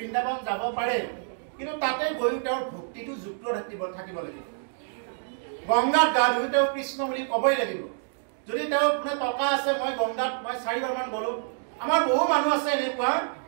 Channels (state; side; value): silent; left; digital silence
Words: যাব পাৰে কিন্তু তাতে গৈ তেওঁৰ ভক্তিটো যুক্ত থাকিব লাগিব গংগাত গা ধুই তেওঁ কৃষ্ণ বুলি ক'বই লাগিব যদি তেওঁ মানে টকা আছে মই গংগাত মই 4 বাৰমান গ'লো আমাৰ বহু মানুহ আছে এনেকুৱা